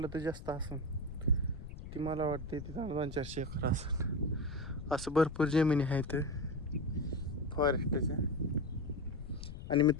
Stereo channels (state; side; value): noise; left; rumble, 11 dB below the sound